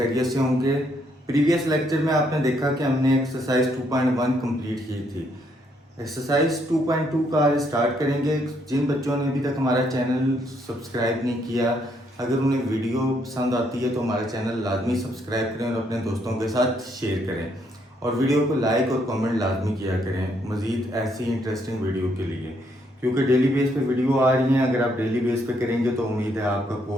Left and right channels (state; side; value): normal; both; correlation 0.72